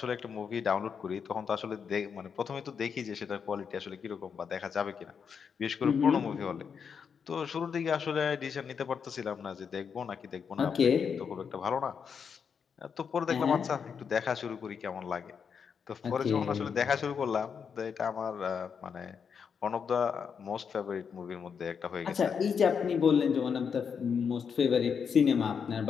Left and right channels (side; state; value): right; quieter; 6.6 dB